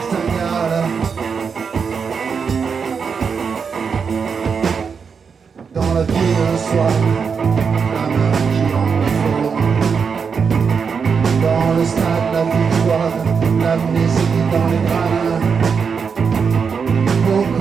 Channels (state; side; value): quieter; left; 6.0 dB